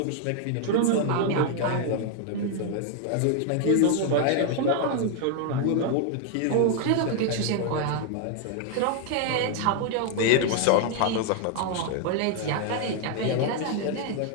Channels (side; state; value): both; different; correlation 0.00